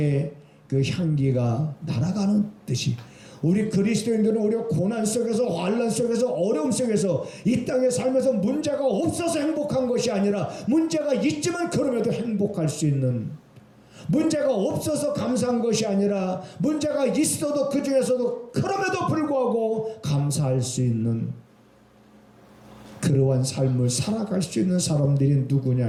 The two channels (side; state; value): both; identical; correlation 1.00